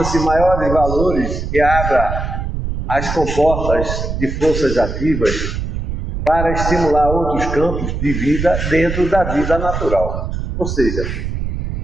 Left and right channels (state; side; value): noise; right; rumble, 4 dB below the sound